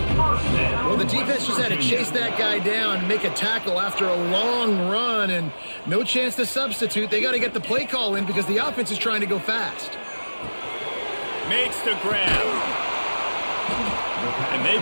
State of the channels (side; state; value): both; inverted; correlation -1.00